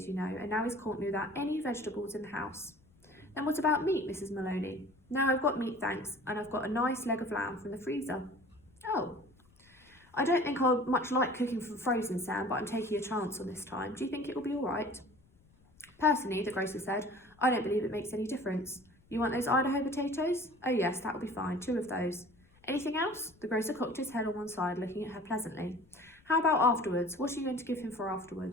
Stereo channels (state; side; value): noise; left; rumble, 30 dB below the sound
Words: you know, and now he's caught me without any vegetables in the house." "Then what about meat, Mrs. Maloney?" "No, I've got meat, thanks, and I've got a nice leg of lamb from the freezer." "Oh, I don't think I'll much like cooking from frozen, Sam, but I'm taking a chance on this time. Do you think it will be all right?" "Personally," the grocer said, "I don't believe it makes any difference. You want those Idaho potatoes? Oh yes, that'll be fine, 2 of those. Anything else?" The grocer cocked his head on one side, looking at her pleasantly. "How about afterwards? What are you going to give him for